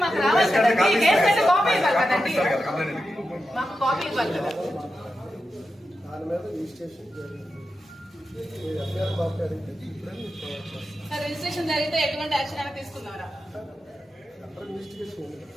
మాకు రావాలి కదండి. కేసు అయితే కాపీ ఇవ్వాలి కదండి, మాకు కాపీ ఇవ్వాలి కదా. రిజిస్ట్రేషన్ జరిగితే ఎటువంటి యాక్షన్ అయినా తీసుకున్నారా?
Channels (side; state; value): both; normal; correlation 0.89